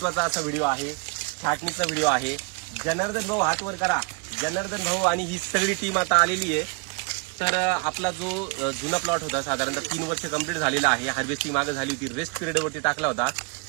असा व्हिडिओ आहे, छाटणीचा व्हिडिओ आहे. जनार्दन भाऊ हात वर करा. जनार्दन भाऊ आणि ही सगळी टीम आता आलेली आहे. तर आपला जो जुना प्लॉट होता साधारणतः 3 वर्ष कंप्लीट झालेला आहे. हार्वेस्टिंग मागे झाली होती, रेस्ट पिरियड वरती टाकला होता.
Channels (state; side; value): quieter; left; 32.0 dB